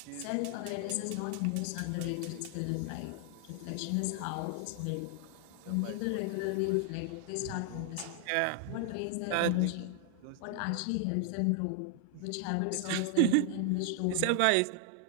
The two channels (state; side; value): different; both; correlation 0.00